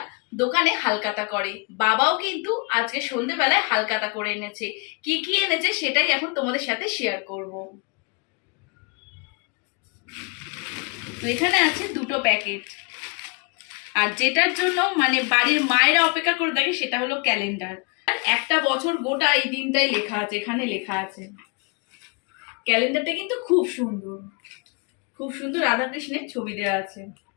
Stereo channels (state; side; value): quieter; right; 33.1 dB